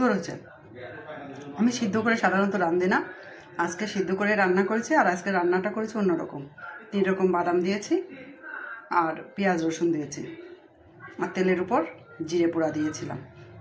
হয়েছে। আমি সিদ্ধ করে সাধারণত রাঁধি না, আজকে সিদ্ধ করে রান্না করেছি। আর আজকে রান্নাটা করেছি অন্যরকম, 3 রকম বাদাম দিয়েছি আর পেঁয়াজ রসুন দিয়েছি আর তেলের উপর জিরে পোড়া দিয়েছিলাম,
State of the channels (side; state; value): both; identical; correlation 1.00